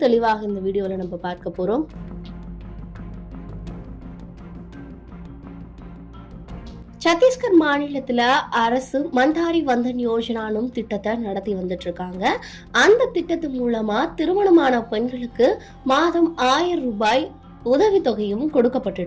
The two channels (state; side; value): identical; both; correlation 1.00